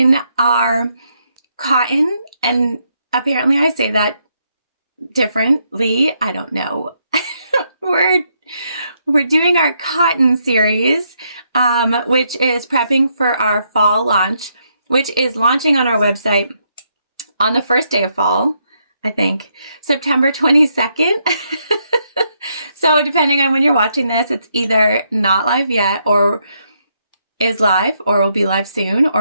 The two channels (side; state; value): both; inverted; correlation -0.77